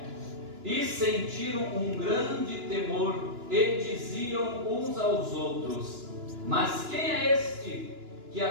E sentiram um grande temor, e diziam uns aos outros: Mas quem é este, que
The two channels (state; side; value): late; left; 2.9 ms